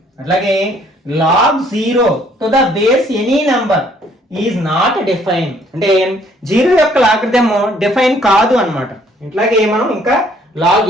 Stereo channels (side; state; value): both; normal; correlation 0.63